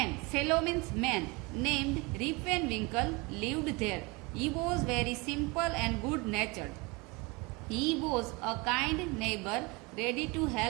fellow means man, named Rip Van Winkle lived there. He was very simple and good-natured. He was a kind neighbor, ready to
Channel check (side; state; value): left; quieter; 26.7 dB